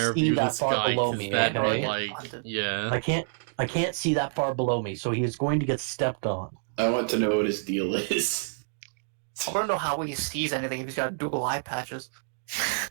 this guy because that'd be like, yeah. I can't see that far below me, so he's going to get stepped on. I want to know what his deal is. I want to know how he sees anything if he's got dual eye patches.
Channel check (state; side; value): silent; left; digital silence